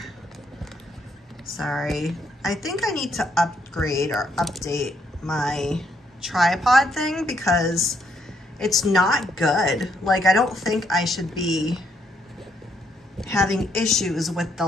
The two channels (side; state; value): both; normal; correlation 0.73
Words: Sorry. I think I need to upgrade or update my tripod thing because it's not good. Like, I don't think I should be having issues with the